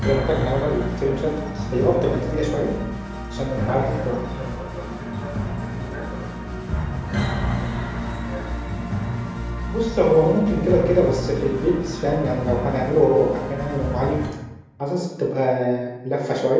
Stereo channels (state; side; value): identical; both; correlation 1.00